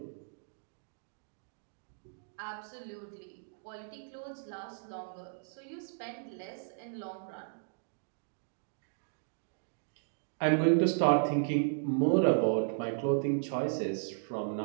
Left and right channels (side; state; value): left; silent; digital silence